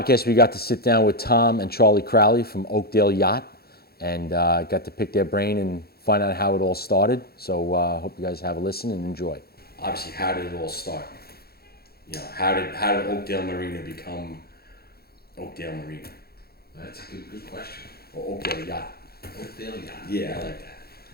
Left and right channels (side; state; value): right; late; 0.45 ms